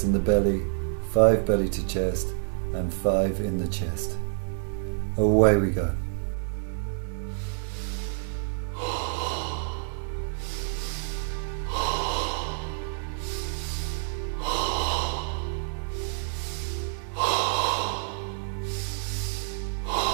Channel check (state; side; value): silent; left; digital silence